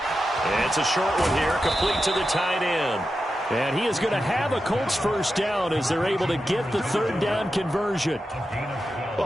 It's a short one here, complete to the tight end. And he is going to have a Colts first down as they're able to get the 3rd down conversion.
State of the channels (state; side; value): normal; both; correlation 0.90